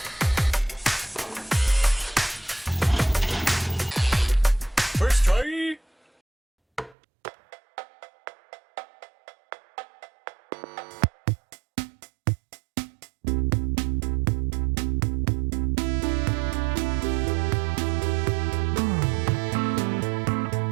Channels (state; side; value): drops out; left; at 7.0 s